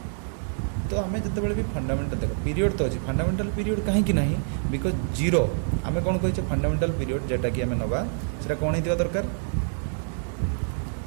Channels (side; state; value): left; silent; digital silence